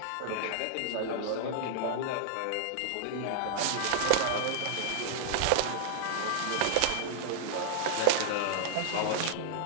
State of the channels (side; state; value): both; different; correlation -0.01